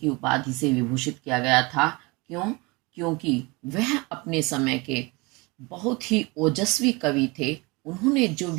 उपाधि से विभूषित किया गया था। क्यों? क्योंकि वह अपने समय के बहुत ही ओजस्वी कवि थे। उन्होंने जो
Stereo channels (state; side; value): quieter; left; 25.9 dB